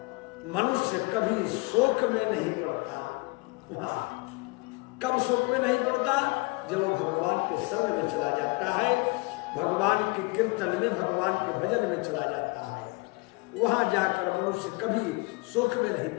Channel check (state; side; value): quieter; right; 26.9 dB